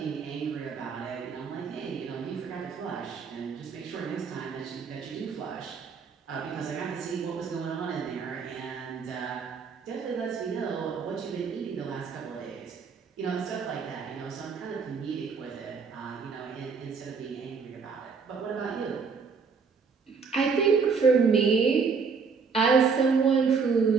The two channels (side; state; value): left; quieter; 5.4 dB